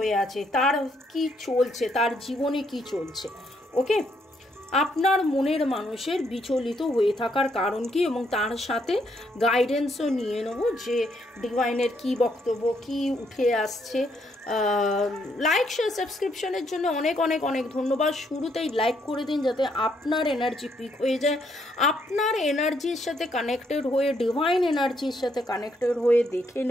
আছে, তার কি চলছে, তার জীবনে কি চলছে। ওকে, আপনার মনের মানুষের বিচলিত হয়ে থাকার কারণ কি, এবং তার সাথে গাইডেন্সও নিয়ে নেব যে ডিভাইনের কি বক্তব্য, কি উঠে আসছে। লাইক শেয়ার সাবস্ক্রিপশনের জন্য অনেক অনেক অনেক ধন্যবাদ। শুরুতেই লাইক করে দিন যাতে আপনার এনার্জি পিক হয়ে যায়। আপনার এনার্জির সাথে কানেক্টেড হয়ে, ডিভাইন এনার্জির সাথে কানেক্টেড হয়ে দেখে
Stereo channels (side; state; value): both; normal; correlation 0.73